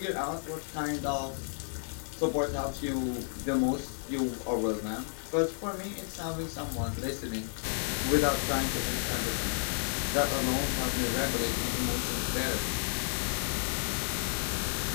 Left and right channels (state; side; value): silent; right; 56 dB below the other